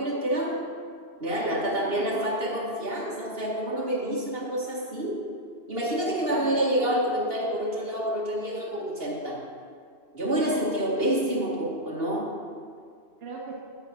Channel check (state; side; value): late; left; 2.8 ms